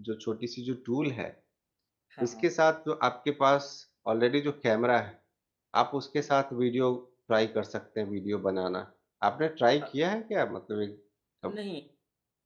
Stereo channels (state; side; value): identical; both; correlation 1.00